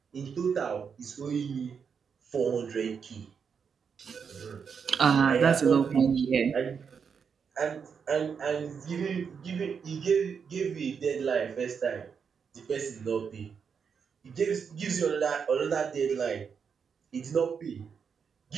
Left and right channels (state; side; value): quieter; left; 6.4 dB